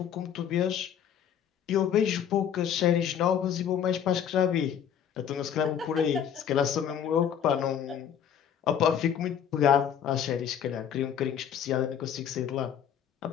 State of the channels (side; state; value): right; quieter; 8.8 dB